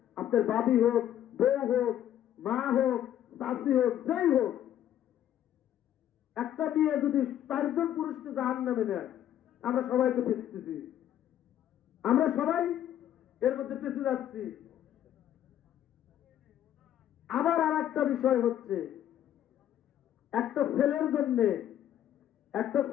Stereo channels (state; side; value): quieter; right; 11.2 dB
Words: আপনার বাবি হোক, বউ হোক, মা হোক, চাষি হোক, যেই হোক, একটা মেয়ে যদি 4জন পুরুষকে জাহান্নামে নেয়, আমরা সবাই তো পেঁচতেছি, আমরা সবাই এর মধ্যে পেঁচে যাচ্ছি। আবার আর একটা বিষয় হচ্ছে, একটা ছেলের জন্য